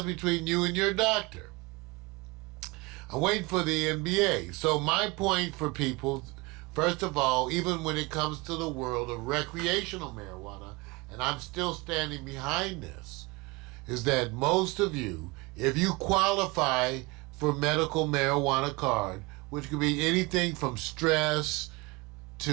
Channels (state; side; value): quieter; left; 24.6 dB